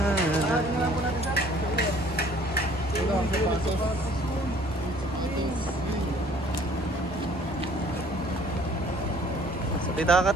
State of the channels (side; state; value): both; normal; correlation 0.56